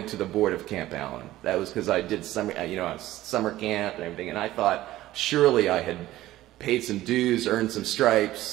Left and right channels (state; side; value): quieter; left; 15.5 dB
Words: to the board of Camp Allen. That was because I did summer camp and everything, and I thought surely I had paid some dues, earned some